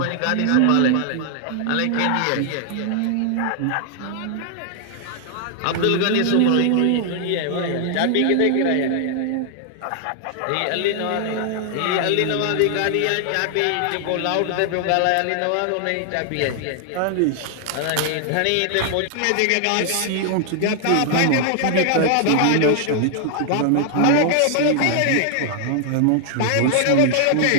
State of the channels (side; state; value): both; different; correlation 0.00